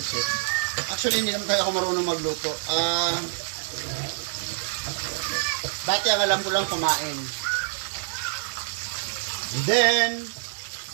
Actually, hindi naman tayo ako marunong magluto. Dati ang alam ko lang kumain. And then,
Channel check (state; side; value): silent; left; digital silence